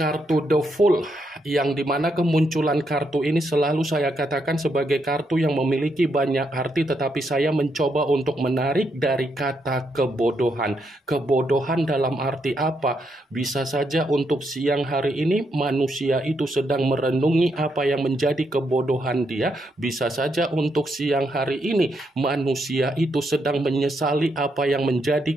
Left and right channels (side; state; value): both; normal; correlation 0.79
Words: The Fool, yang dimana kemunculan kartu ini selalu saya katakan sebagai kartu yang memiliki banyak arti, tetapi saya mencoba untuk menarik dari kata kebodohan. Kebodohan dalam arti apa? Bisa saja untuk siang hari ini manusia itu sedang merenungi apa yang menjadi kebodohan dia. Bisa saja untuk siang hari ini manusia itu sedang menyesali apa yang menjadi